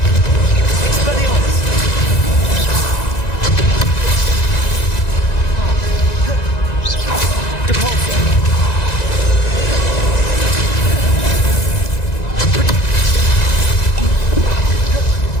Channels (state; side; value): late; right; 1.9 ms